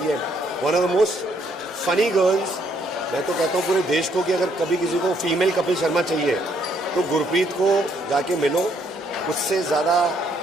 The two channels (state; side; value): normal; both; correlation 0.70